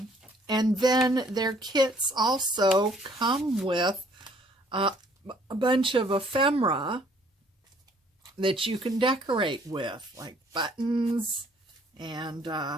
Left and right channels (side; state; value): both; normal; correlation 0.60